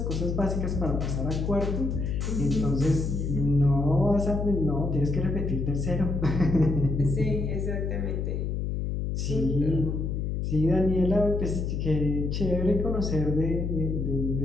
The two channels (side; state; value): left; noise; hum, 1 dB below the sound